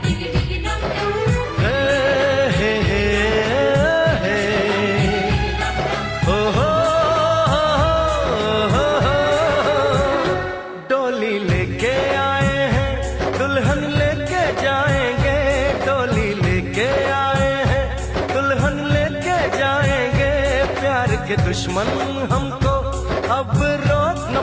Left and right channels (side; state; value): both; identical; correlation 1.00